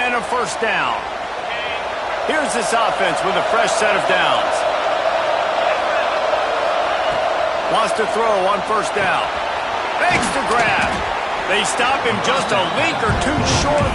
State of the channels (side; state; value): both; identical; correlation 1.00